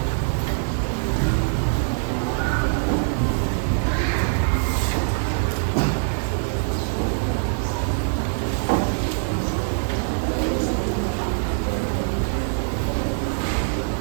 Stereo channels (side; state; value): left; silent; 63 dB below the other